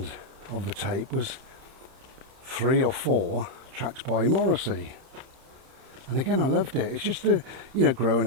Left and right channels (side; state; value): left; late; 31 ms